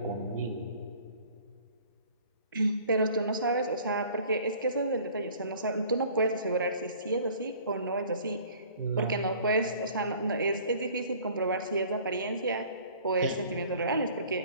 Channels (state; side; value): inverted; both; correlation -0.51